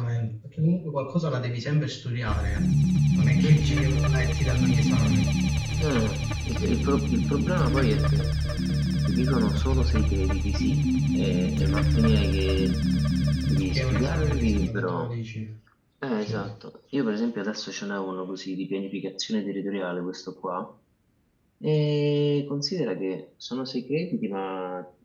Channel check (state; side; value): identical; both; correlation 1.00